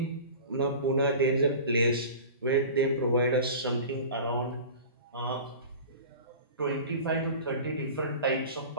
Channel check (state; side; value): inverted; both; correlation -0.36